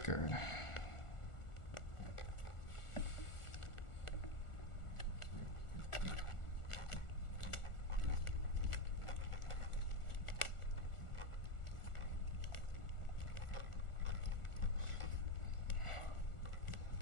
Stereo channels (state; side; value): late; right; 1.4 ms